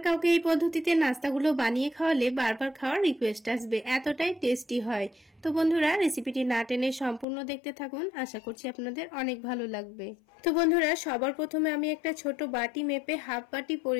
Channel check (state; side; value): drops out; right; at 7.2 s